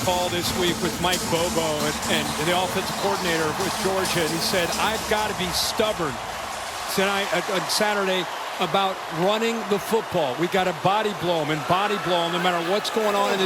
call this week with Mike Bobo and the offensive coordinator with Georgia. And he said, I've got to be stubborn tonight on Saturday about running the football. We got to body blow them and body blow them no matter what's going on in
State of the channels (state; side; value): identical; both; correlation 1.00